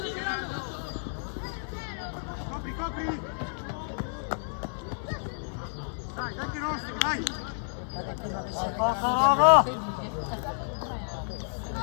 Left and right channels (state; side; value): silent; right; digital silence